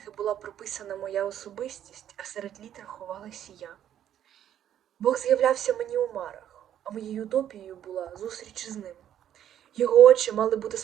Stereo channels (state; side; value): quieter; left; 10.6 dB